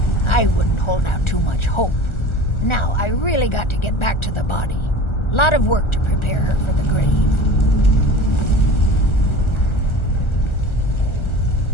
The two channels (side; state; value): right; late; 1.4 ms